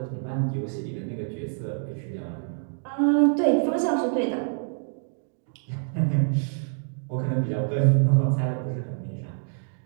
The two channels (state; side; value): silent; left; digital silence